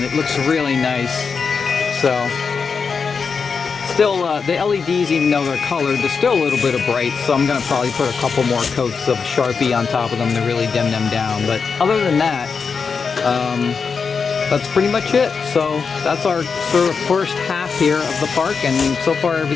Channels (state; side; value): quieter; right; 5.5 dB